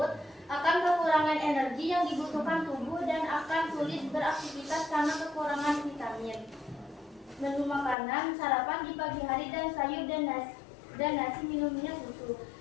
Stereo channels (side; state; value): right; drops out; at 8.0 s